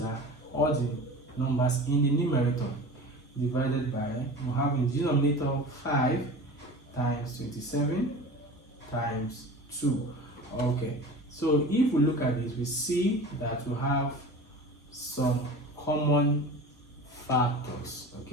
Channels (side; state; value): both; normal; correlation 0.36